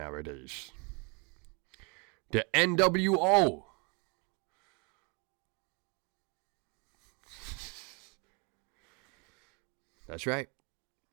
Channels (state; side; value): quieter; left; 32.4 dB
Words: The NWO. That's right.